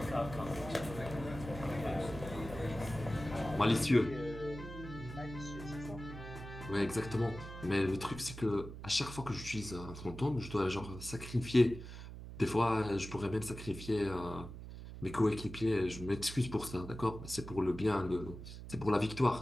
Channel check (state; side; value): noise; right; hum, 11 dB below the sound